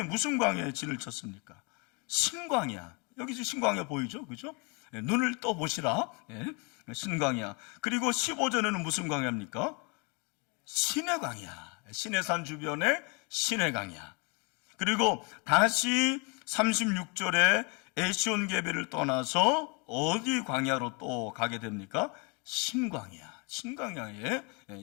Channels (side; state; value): right; quieter; 32.1 dB